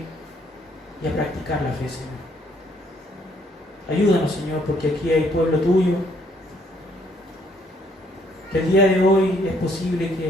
y a practicar la fe, Señor. Ayúdanos, Señor, porque aquí hay pueblo tuyo, que el día de hoy es posible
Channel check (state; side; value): normal; both; correlation 0.67